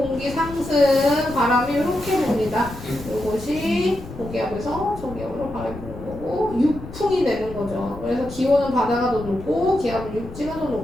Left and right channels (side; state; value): left; noise; rumble, 14 dB below the sound